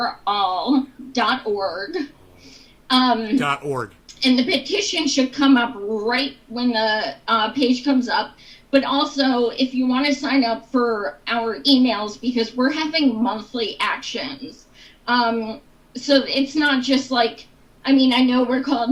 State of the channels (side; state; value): both; identical; correlation 1.00